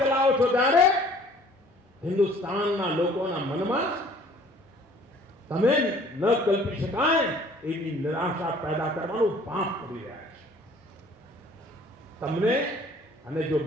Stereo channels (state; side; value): normal; both; correlation 0.54